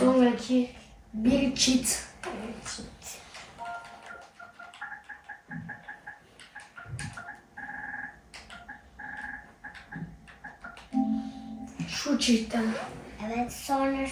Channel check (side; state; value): both; identical; correlation 1.00